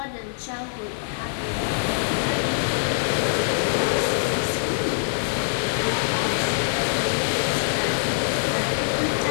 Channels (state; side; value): silent; right; digital silence